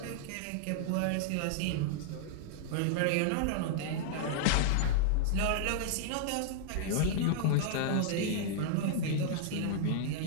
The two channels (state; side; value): different; both; correlation -0.01